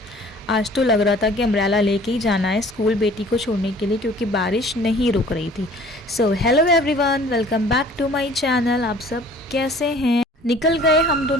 आज तो लग रहा था कि अम्ब्रेला लेके ही जाना है स्कूल बेटी को छोड़ने के लिए क्योंकि बारिश नहीं रुक रही थी। So hello everyone, welcome back to my channel. आप सब कैसे हैं? निकल गए हम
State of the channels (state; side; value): normal; both; correlation 0.51